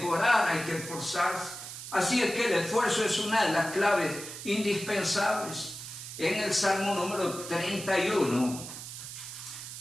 hay que esforzarse. Así es que el esfuerzo es una de las claves indispensables. En el Salmo número 31,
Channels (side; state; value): right; noise; hiss, 10 dB below the sound